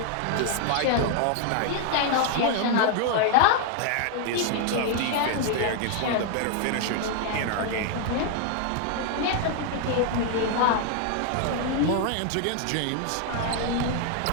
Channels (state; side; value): different; both; correlation 0.00